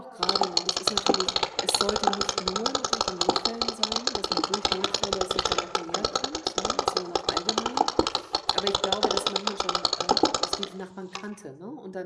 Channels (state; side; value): identical; both; correlation 1.00